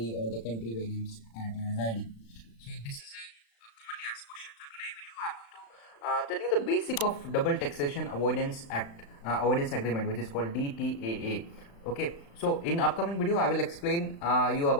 or the country where I'm currently residing? So this is a commonly asked question. So today video I'm going to tell you the basic of double taxation avoidance avoidance agreement, which is called DTAA. Okay, so in upcoming video I will explain you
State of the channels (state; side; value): late; right; 35 ms